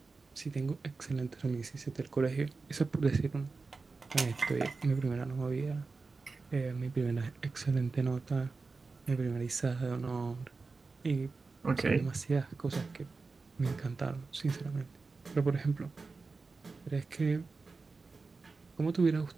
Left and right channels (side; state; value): left; quieter; 4.1 dB